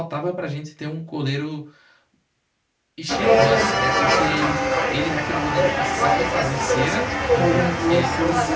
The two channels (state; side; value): identical; both; correlation 1.00